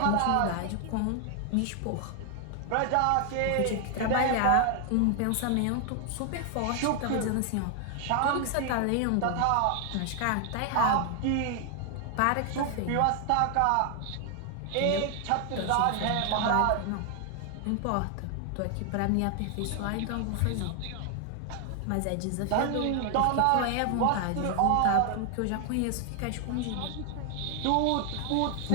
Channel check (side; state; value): both; different; correlation 0.00